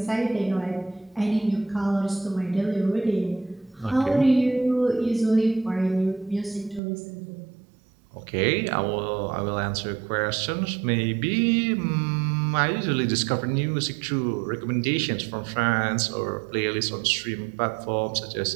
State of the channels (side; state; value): left; drops out; at 6.8 s